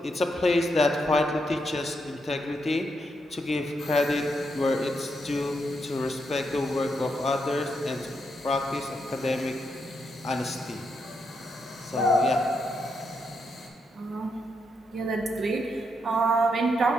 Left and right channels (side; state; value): both; normal; correlation 0.80